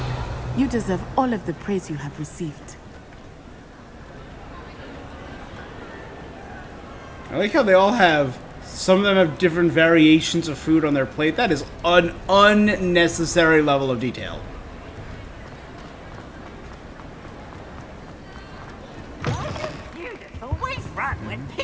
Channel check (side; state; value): both; identical; correlation 1.00